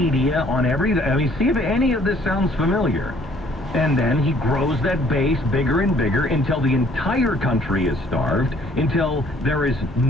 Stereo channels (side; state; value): both; normal; correlation 0.59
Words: on everything. I mean, see if any of this sounds familiar. And then he grows that base bigger and bigger until the entire country is starved, until there is